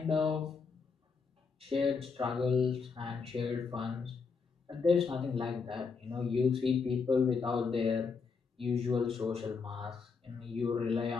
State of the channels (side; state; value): right; quieter; 5.1 dB